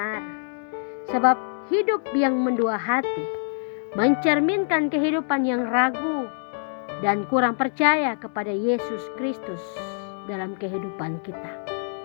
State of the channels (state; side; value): silent; right; digital silence